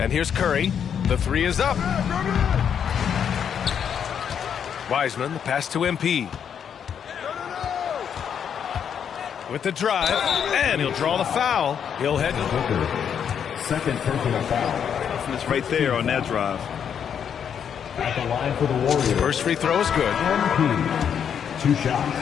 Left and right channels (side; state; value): right; quieter; 8.0 dB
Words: here's Curry. The 3 is up. Wiseman, the pass to MP. With the drive. And he'll draw the foul. He'll head to second personal foul. It's right there on that drive. At the line for the Warriors. First free throw is good. MP. 2 shots.